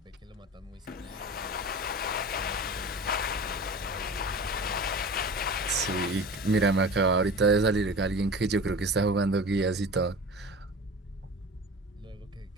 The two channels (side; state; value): both; normal; correlation 0.36